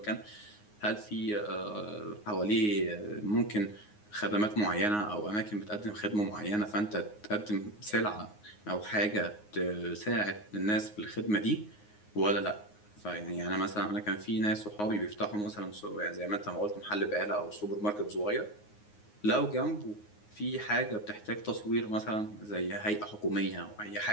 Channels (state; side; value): late; right; 9.6 ms